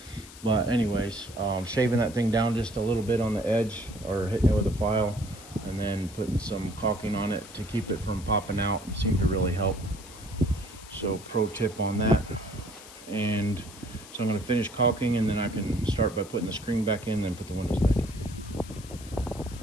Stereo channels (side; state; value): left; noise; hiss, 18 dB below the sound